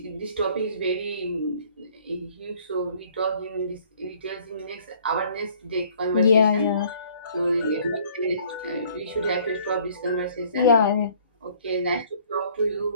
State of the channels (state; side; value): inverted; both; correlation -0.57